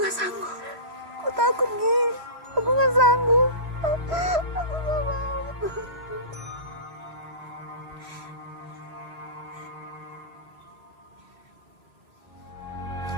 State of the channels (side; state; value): left; late; 3.1 ms